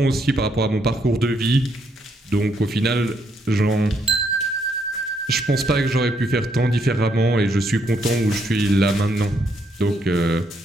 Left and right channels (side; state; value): both; normal; correlation 0.74